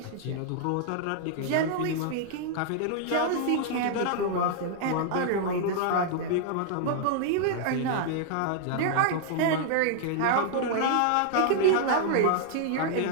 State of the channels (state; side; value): different; both; correlation -0.01